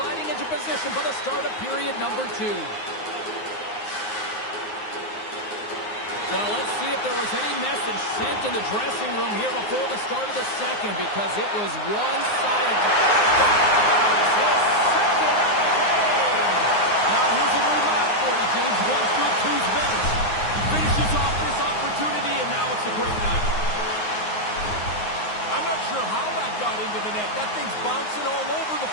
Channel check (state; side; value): late; right; 9.6 ms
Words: into position for the start of period number 2. Well, let's see if there was any message sent in the dressing room here before the start of the second, because it was one-sided. His second of the game. Now here's a little math for you, James. One's good, two's better. He finishes off this opportunity, and now it's a great night. I'm not sure how that got into the net. That thing's bouncing all over the